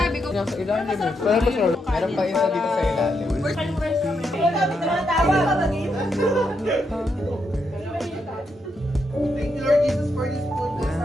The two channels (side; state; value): both; normal; correlation 0.81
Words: ko. Nasa ilalim eh. Meron pa isa dito sa ilalim. Thank you Lord Jesus for this